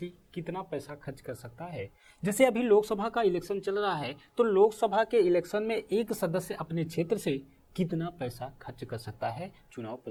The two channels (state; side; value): identical; both; correlation 1.00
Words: कितना पैसा खर्च कर सकता है। जैसे अभी लोकसभा का इलेक्शन चल रहा है, तो लोकसभा के इलेक्शन में एक सदस्य अपने क्षेत्र से कितना पैसा खर्च कर सकता है चुनाव